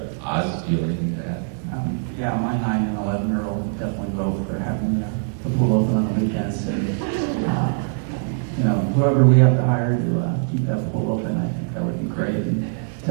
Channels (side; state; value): left; silent; digital silence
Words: Oz, do you have anything to add? Yeah, my 9 and 11-year-old would definitely vote for having the pool open on the weekends, and whoever we have to hire to keep that pool open, I think that would be great, and